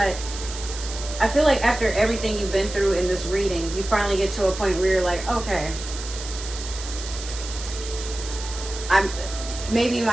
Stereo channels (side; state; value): right; noise; hiss, 10 dB below the sound